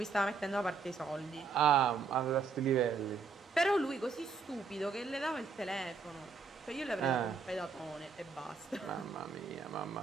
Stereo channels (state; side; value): quieter; left; 4.9 dB